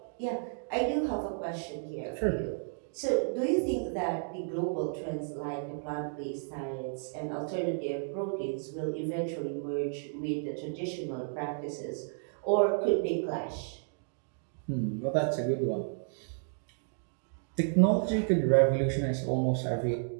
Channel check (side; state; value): left; silent; digital silence